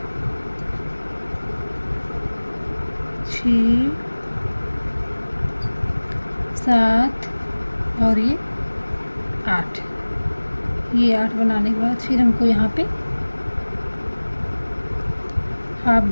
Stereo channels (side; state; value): both; inverted; correlation -1.00